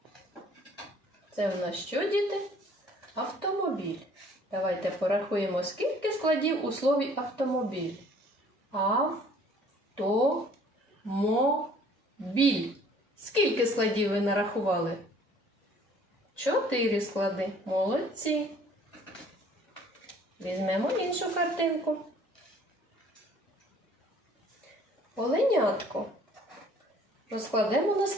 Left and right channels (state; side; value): normal; both; correlation 0.56